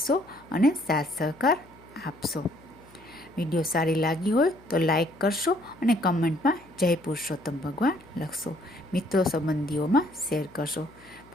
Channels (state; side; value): noise; left; hum, 26 dB below the sound